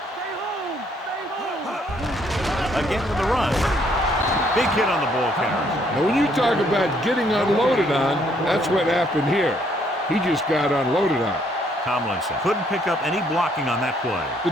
Stay home. Again with the run. Big hit on the ball carrier. Now, when you talk about getting unloaded on, that's what happened here. He just got unloaded on. Tomlinson couldn't pick up any blocking on that play. The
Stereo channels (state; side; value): normal; both; correlation 0.68